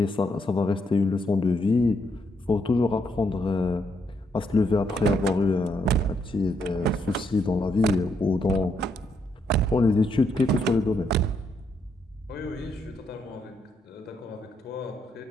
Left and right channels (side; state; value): both; normal; correlation 0.76